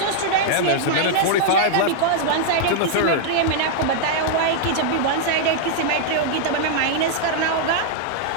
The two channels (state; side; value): different; both; correlation -0.01